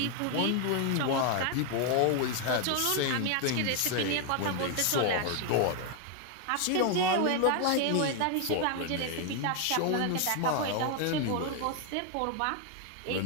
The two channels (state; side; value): different; both; correlation 0.00